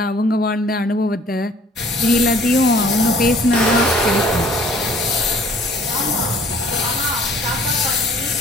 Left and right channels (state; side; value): normal; both; correlation 0.56